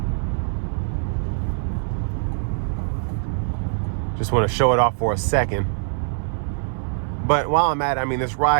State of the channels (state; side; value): silent; left; 59 dB below the other